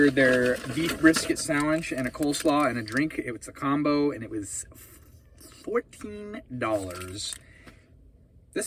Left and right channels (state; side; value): identical; both; correlation 1.00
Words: their beef brisket sandwich and a coleslaw and a drink. It was a combo and it was $14.